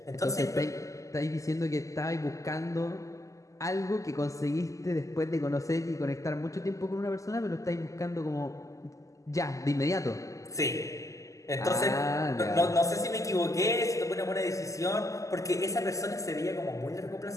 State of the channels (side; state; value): right; late; 0.16 ms